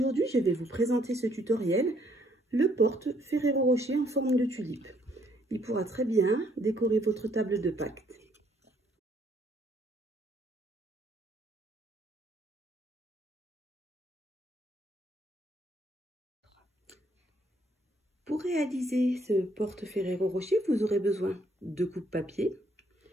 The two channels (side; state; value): both; normal; correlation 0.67